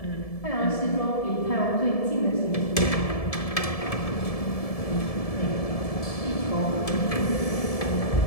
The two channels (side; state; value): right; late; 1.7 ms